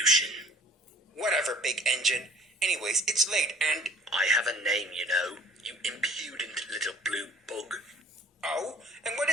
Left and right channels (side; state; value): both; normal; correlation 0.52